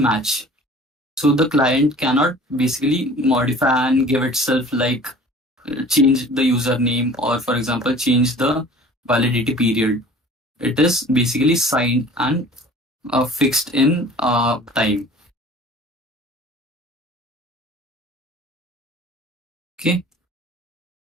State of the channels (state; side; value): normal; both; correlation 0.46